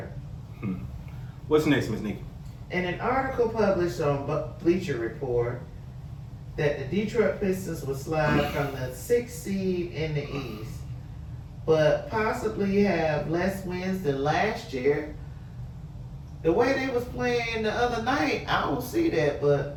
What's next, Miss Nikki? In an article published on Bleacher Report, that the Detroit Pistons will slide from the 6th seed in the East, but possibly have less wins than last year. The way they was playing the other night, I don't see that,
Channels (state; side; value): identical; both; correlation 1.00